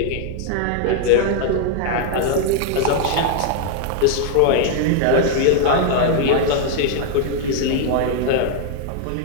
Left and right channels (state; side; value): different; both; correlation 0.00